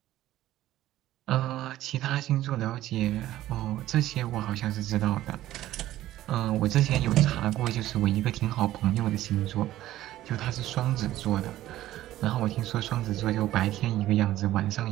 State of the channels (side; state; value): left; quieter; 14.4 dB